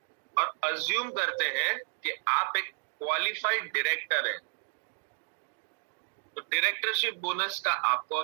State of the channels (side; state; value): left; silent; digital silence